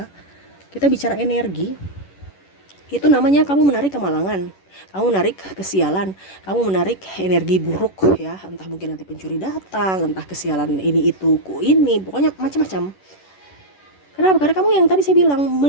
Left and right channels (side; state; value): right; late; 11 ms